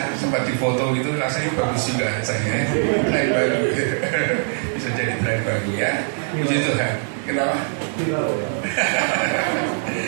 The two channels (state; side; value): silent; left; digital silence